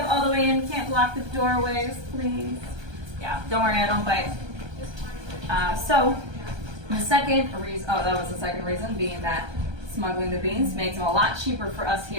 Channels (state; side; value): late; left; 1.3 ms